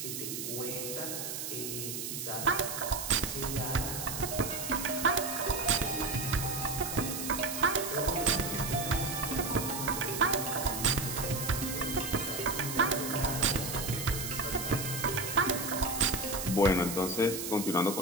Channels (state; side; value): noise; right; hiss, 5 dB below the sound